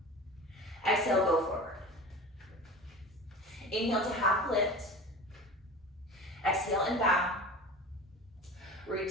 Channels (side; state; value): both; normal; correlation 0.35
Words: Exhale, go forward. Inhale to half lift. Exhale and bow. Root